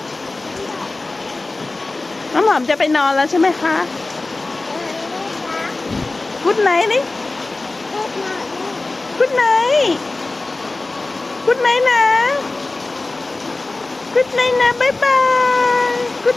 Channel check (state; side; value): quieter; right; 3.2 dB